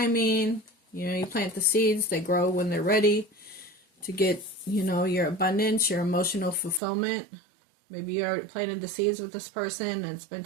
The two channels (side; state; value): left; drops out; at 6.8 s